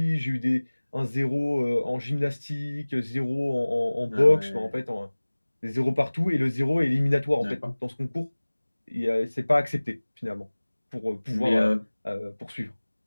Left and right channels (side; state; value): both; inverted; correlation -1.00